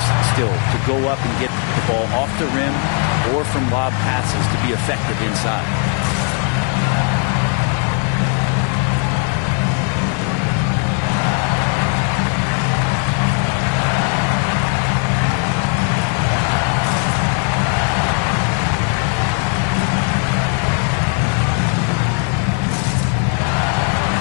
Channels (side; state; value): right; quieter; 39.2 dB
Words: still to go up and get the ball off the rim or from lob passes to be effective inside.